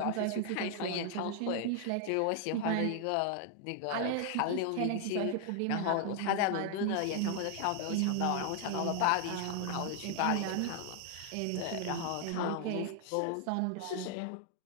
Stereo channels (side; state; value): both; different; correlation 0.00